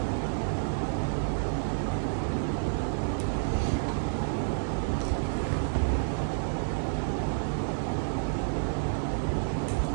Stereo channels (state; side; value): silent; left; digital silence